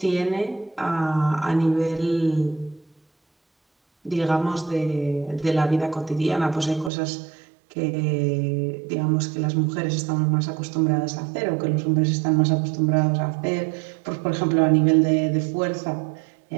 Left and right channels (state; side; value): drops out; left; at 6.9 s